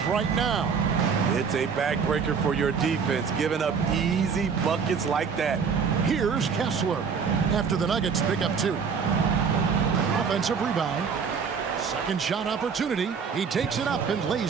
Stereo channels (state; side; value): quieter; left; 6.1 dB